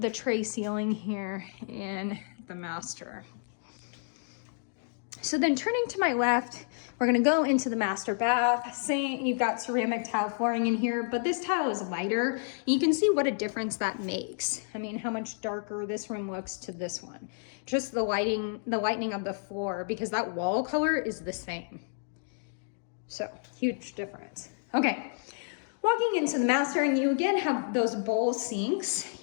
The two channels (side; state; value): right; silent; digital silence